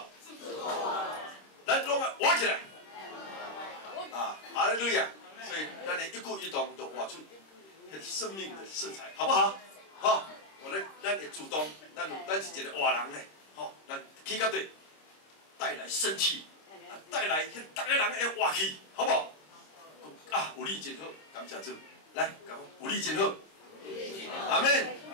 咱拢活起来。啊，哈利路亚。所以咱的一举一动都活出生命的色彩，好不好？好，咱会主动，咱是一个活人呢。吼，咱起到对，带来生气，带来迄逐个人会活气，好不好？啊，有你真好，感谢主。来，讲有你真好，阿门。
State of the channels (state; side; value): late; right; 26 ms